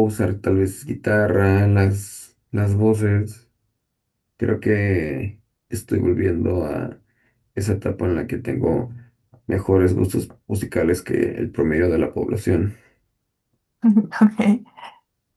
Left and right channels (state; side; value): identical; both; correlation 1.00